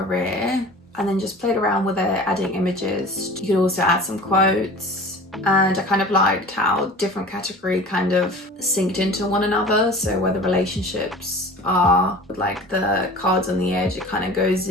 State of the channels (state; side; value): normal; both; correlation 0.40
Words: and then just played around with it, adding images. You could also add some quotes. And I kind of liked how different category kind of synced into one another. So where the relationships are with like the cards on the edge, it kind of goes